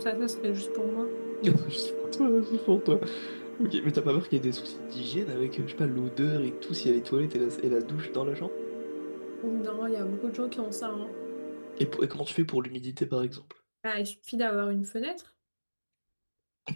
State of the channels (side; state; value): both; inverted; correlation -1.00